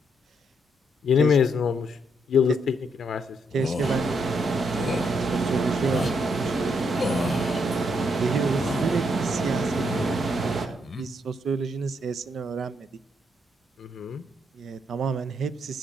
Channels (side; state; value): both; normal; correlation 0.76